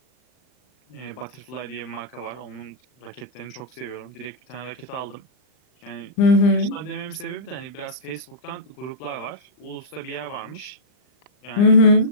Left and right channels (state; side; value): late; right; 39 ms